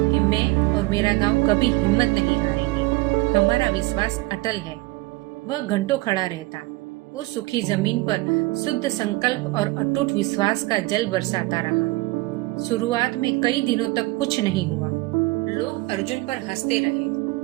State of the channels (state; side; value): quieter; left; 21.2 dB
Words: कि मैं और मेरा गांव कभी हिम्मत नहीं हारेंगे। हमारा विश्वास अटल है। वह घंटों खड़ा रहता, उस सूखी जमीन पर शुद्ध संकल्प और अटूट विश्वास का जल बरसाता रहा। शुरुआत में कई दिनों तक कुछ नहीं हुआ। लोग अर्जुन पर हंसते रहे,